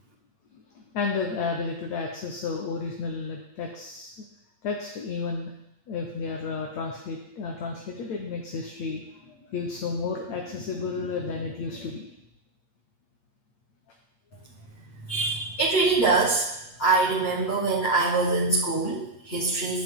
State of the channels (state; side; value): late; right; 8.6 ms